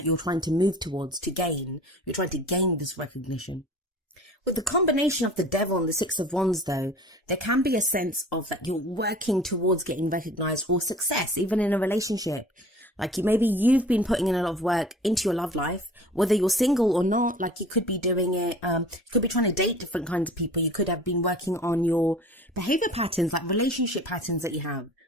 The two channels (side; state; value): both; normal; correlation 0.44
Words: you're trying to move towards, to gain. You're trying to gain this recognition. With the combination of the Devil and the Six of Wands, though, there can be a sense of that you're working towards getting recognized or success, even in a relationship. Maybe you've been putting in a lot of work into your love life, whether you're single or not. You could be doing it, you could be trying to date different kinds of people. You could have been working on your behavior patterns, relationship patterns that you have.